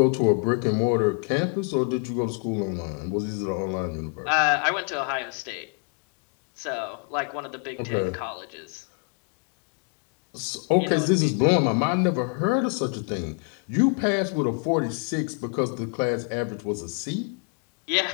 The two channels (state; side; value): quieter; right; 38.7 dB